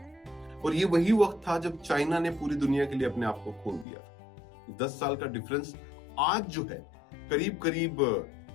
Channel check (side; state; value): right; drops out; at 3.9 s